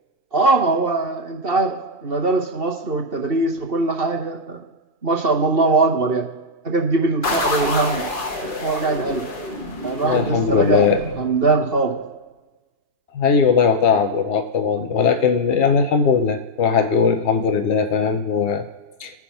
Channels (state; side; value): late; left; 2.4 ms